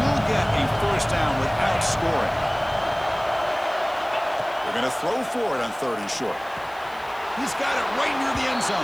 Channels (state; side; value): noise; left; hiss, 25 dB below the sound